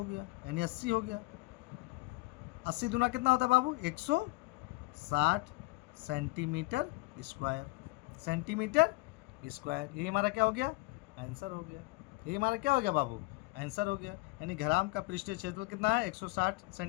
गया, यानी 80 हो गया। 80 दूना कितना होता है बाबू 160 सेंटीमीटर स्क्वायर, सेंटीमीटर स्क्वायर। यही हमारा क्या हो गया? आंसर हो गया। यही हमारा क्या हो गया बाबू? आंसर हो गया। यानी घनाभ का पृष्ठीय क्षेत्रफल कितना है? 160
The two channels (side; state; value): right; quieter; 22.6 dB